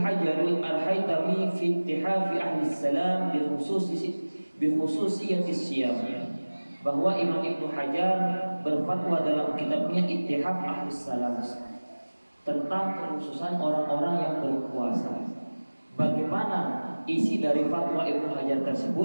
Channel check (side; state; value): both; inverted; correlation -1.00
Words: al-Haytami fi ittihafi ahli salam bi khususiyati siyam, bahwa Imam Ibnu Hajar berfatwa dalam kitabnya Ittihaf Ahli Salam tentang kekhususan orang-orang yang berpuasa. Bagaimana isi dari fatwa Ibnu Hajar